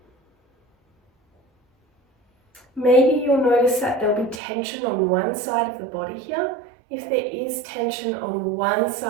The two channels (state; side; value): drops out; left; at 4.4 s